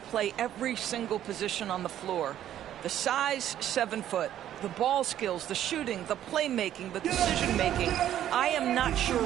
every single position on the floor. The size, 7 foot. The ball skills, the shooting, the playmaking, the decision-making. I am not sure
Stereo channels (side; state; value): left; quieter; 11.4 dB